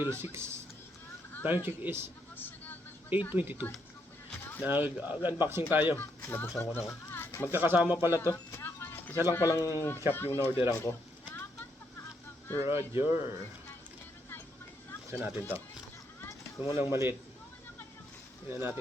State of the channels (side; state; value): both; normal; correlation 0.76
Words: 6. Time check is 8:22. Nag-unboxing tayo. Nabuksan ko na ako. Magkakasama pala to. Isa lang palang shop yung na-orderan ko. Roger. Buksan natin to. Ito mo lang maliit. Tingnan